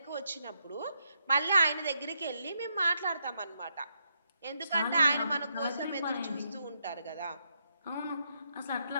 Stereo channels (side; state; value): both; inverted; correlation -0.79